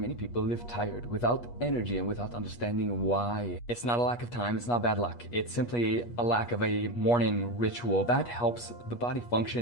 people live tired, without energy and without understanding why. It's not a lack of time, it's not bad luck. It's simply a lack of a morning ritual that helps the body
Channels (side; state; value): right; late; 8.3 ms